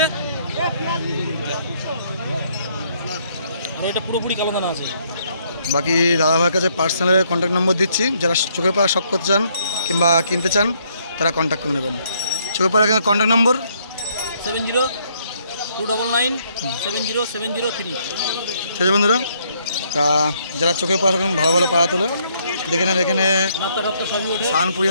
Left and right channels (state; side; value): inverted; both; correlation -0.70